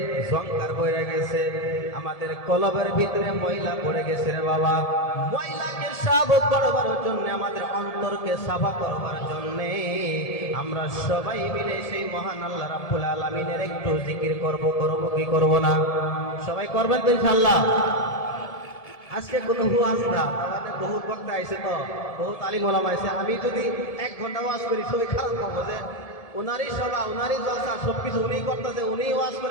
সংকার পড়ে গেছে, আমাদের কলবের ভিতরে ময়লা পড়ে গেছে রে বাবা। ময়লাকে সাফ করবার জন্য, আমাদের অন্তরকে সাফা করবার জন্য আমরা সবাই মিলে সেই মহান আল্লাহ রাব্বুল আলামিনের একটু জিকির করব কি করব না? সবাই করবেন তো ইনশাআল্লাহ। আজকে কোনো ওয়াজ না, আমাদের বহুত বক্তা আইছে, তো বহুত আলিম ওলামা আইছে। আমি যদি 1 ঘন্টা ওয়াজ করি সবাই খারাপ পাবো যে উনারই সভা, উনারই জলসা, সবকিছু উনিই করতেছে, উনিই ওয়াজ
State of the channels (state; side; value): late; right; 1.7 ms